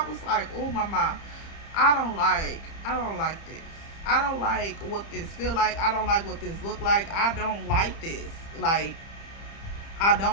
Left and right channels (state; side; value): late; right; 30 ms